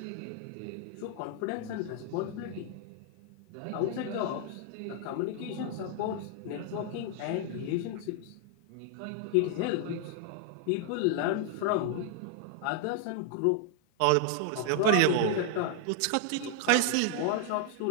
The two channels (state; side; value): different; both; correlation 0.00